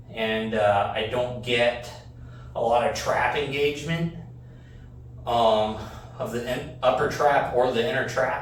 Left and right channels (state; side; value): identical; both; correlation 1.00